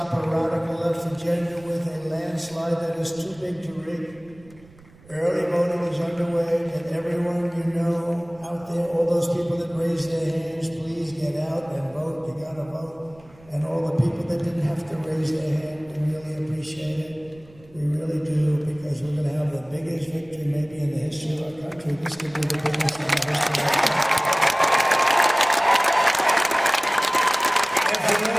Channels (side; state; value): right; noise; rumble, 25 dB below the sound